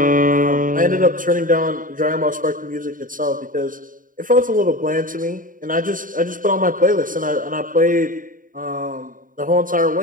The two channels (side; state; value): left; late; 0.39 ms